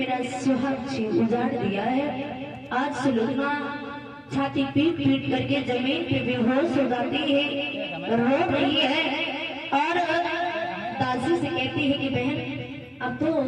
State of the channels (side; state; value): both; identical; correlation 1.00